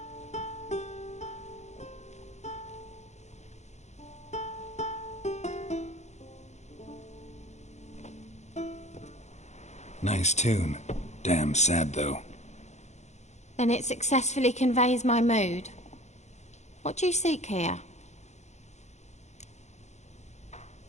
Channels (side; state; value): right; late; 0.33 ms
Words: Nice tune. Damn sad, though. Then it successfully conveys my mood. What do you seek here?